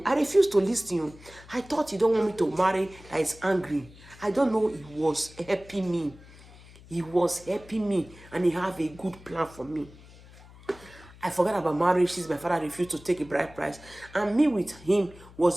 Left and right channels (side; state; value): left; noise; hum, 21 dB below the sound